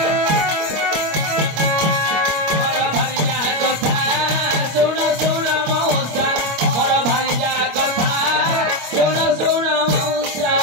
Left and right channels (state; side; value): late; left; 25 ms